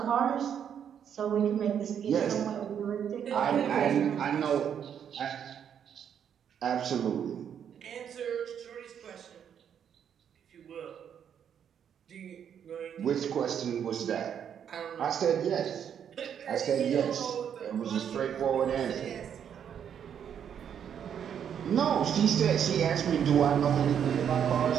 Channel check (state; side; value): quieter; left; 8.5 dB